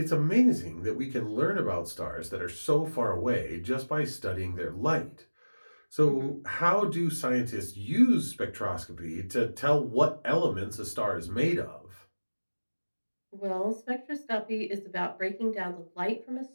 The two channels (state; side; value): inverted; both; correlation -1.00